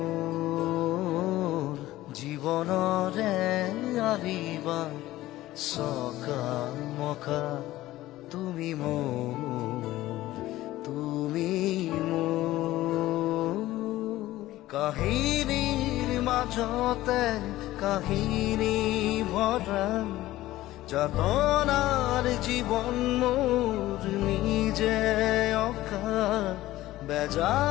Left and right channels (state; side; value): quieter; right; 16.1 dB